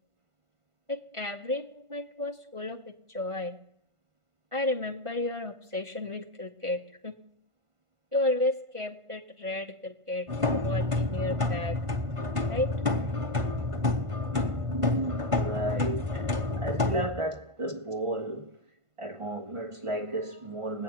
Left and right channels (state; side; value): late; left; 1.5 ms